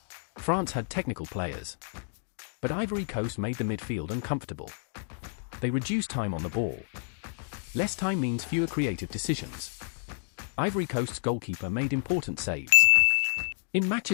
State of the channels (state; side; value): silent; right; digital silence